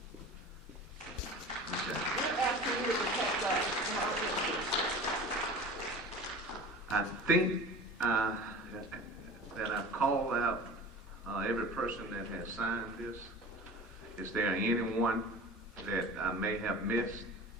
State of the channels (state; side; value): normal; both; correlation 0.37